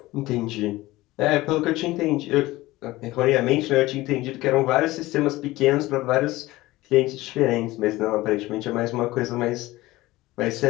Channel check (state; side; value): quieter; right; 18.6 dB